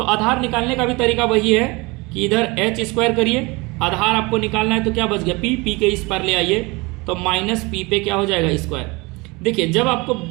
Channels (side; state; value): left; quieter; 25.3 dB